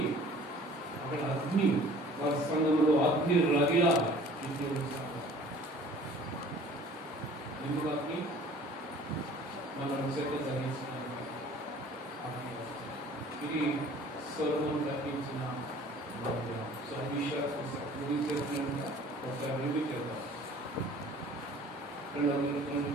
అక్కడ అగ్ని. వారి సంఘంలో అగ్ని రగిలా. దేవుని సంఘం ఎందుకు అగ్ని? మనం చెత్త తగ్గించడానికి అగ్ని. ఇది సొలొమోను కట్టించిన మందిరం. సో ముగించేస్తున్నట్టుగా ఒకసారి రివ్యూ చేద్దాం.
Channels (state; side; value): normal; both; correlation 0.49